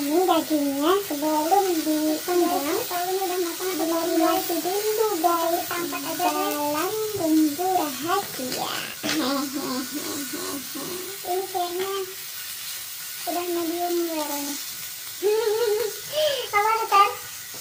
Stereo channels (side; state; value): both; identical; correlation 1.00